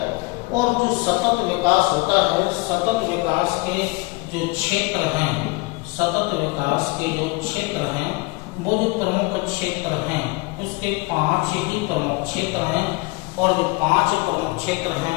और जो सतत विकास होता है, सतत विकास के जो क्षेत्र हैं, सतत विकास के जो क्षेत्र हैं वो जो प्रमुख क्षेत्र हैं उसके 5 ही प्रमुख क्षेत्र हैं। और जो 5 प्रमुख क्षेत्र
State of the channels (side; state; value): right; quieter; 25.7 dB